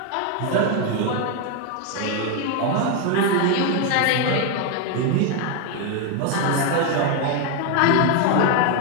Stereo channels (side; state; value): both; different; correlation 0.01